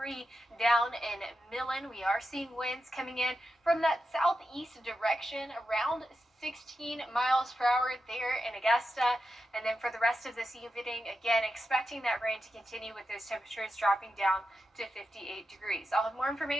down in Millen. We are seeing winds coming in from that southeast direction around 16 miles per hour there in Augusta. And then for the rest of this evening, again, expecting that rain to continue with those temperatures dropping down to 58 degrees. I'll have more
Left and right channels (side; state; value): both; normal; correlation 0.89